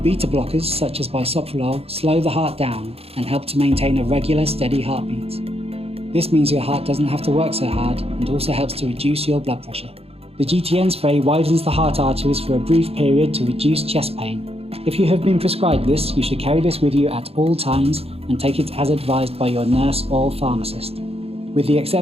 blockers, such as bisoprolol, slow the heart down and help to maintain a regular, steady heartbeat. This means your heart doesn't have to work so hard and also helps to reduce your blood pressure. The GTN spray widens the heart arteries for a brief period to reduce chest pain. If you have been prescribed this, you should carry this with you at all times and take it as advised by your nurse or pharmacist. With the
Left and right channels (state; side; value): late; left; 0.29 ms